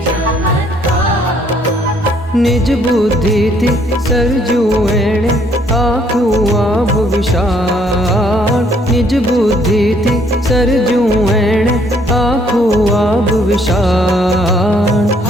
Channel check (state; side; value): normal; both; correlation 0.65